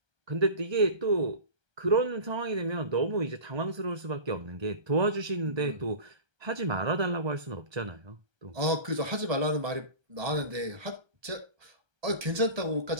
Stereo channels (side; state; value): left; late; 1.3 ms